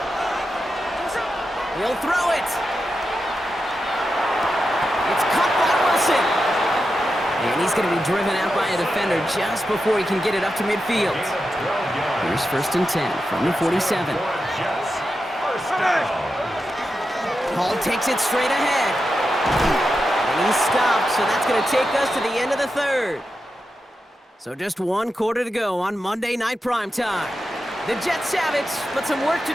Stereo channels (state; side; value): normal; both; correlation 0.89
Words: He'll throw it. It's caught by Wilson. And he's going to be driven out by a defender just before he can get it up to midfield. Here's first and 10 from the 47. Hall takes it straight ahead. And he's stopped, so that's going to take us to the end of the third. So just one quarter to go on Monday Night Primetime. The Jets have it, but some work to